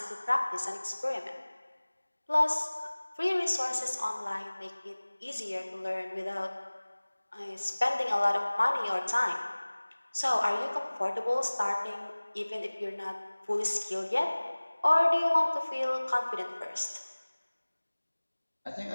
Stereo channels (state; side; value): inverted; both; correlation -1.00